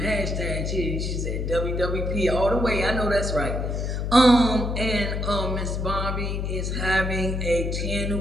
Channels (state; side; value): noise; left; hum, 1 dB below the sound